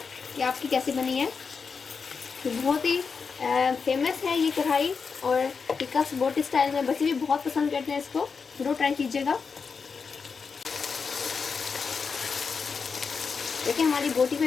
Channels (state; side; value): quieter; right; 5.3 dB